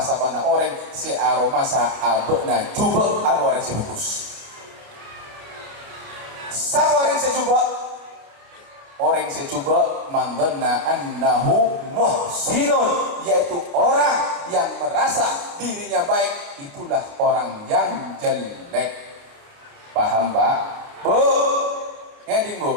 orang si aromasa abena jubek orang si bagus. Sapa orang si jubek? Orang si jubek man dhanna annahu muhsinun, yaitu orang yang merasa dirinya baik, itulah orang yang jelek. Paham Pak? Bu? Ngeding Bu?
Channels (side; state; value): left; late; 29 ms